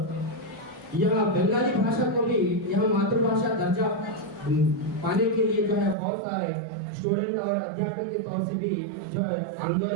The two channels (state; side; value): drops out; left; at 6.0 s